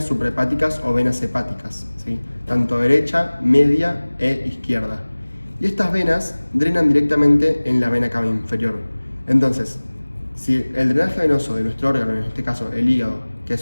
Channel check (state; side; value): inverted; both; correlation -1.00